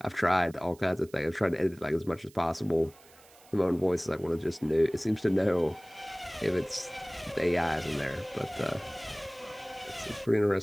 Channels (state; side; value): noise; right; hiss, 25 dB below the sound